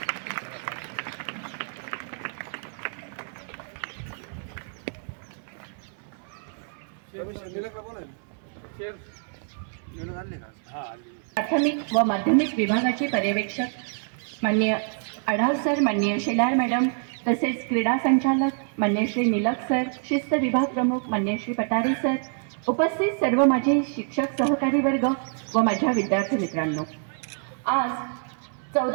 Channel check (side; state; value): left; silent; 58 dB below the other